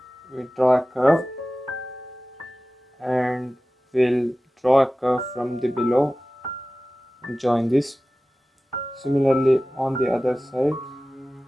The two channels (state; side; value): normal; both; correlation 0.96